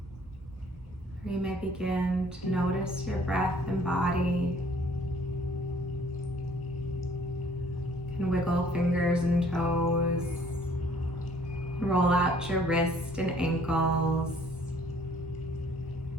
Or you may begin to notice your breath and body. You can wiggle fingers and toes. Roll out your wrists and ankles.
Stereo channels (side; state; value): both; normal; correlation 0.58